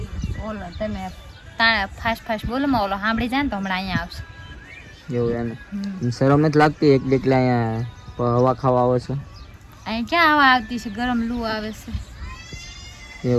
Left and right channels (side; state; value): both; identical; correlation 1.00